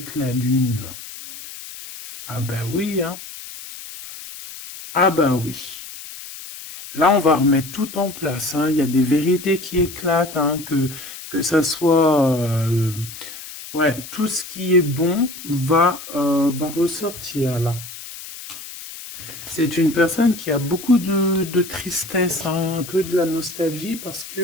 la lune. Ah ben oui, hein. Ah ben oui. Là, on va remettre tout en place. Hein. Il y a des vérités qui éclatent, hein, que ça soit... ouais, tout ce qui est bon va ressortir là. C'est une personne qui a beaucoup de tristesse, hein, un peu de la nostalgie, parce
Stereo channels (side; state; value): left; noise; hiss, 13 dB below the sound